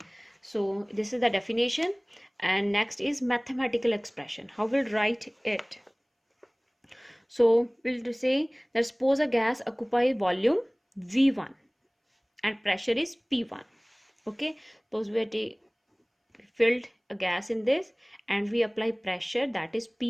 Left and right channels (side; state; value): both; identical; correlation 1.00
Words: So this is the definition, and next is mathematical expression. How we'll write it? So we'll say that suppose a gas occupy volume V1 and pressure is P1. Okay, suppose we are filled a gas in this and we apply pressure, that is